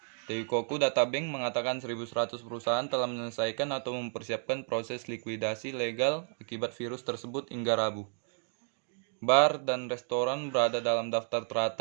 Teikoku Databank mengatakan 1.100 perusahaan telah menyelesaikan atau mempersiapkan proses likuidasi legal akibat virus tersebut hingga Rabu. Bar dan restoran berada dalam daftar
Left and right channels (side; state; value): left; silent; 57 dB below the other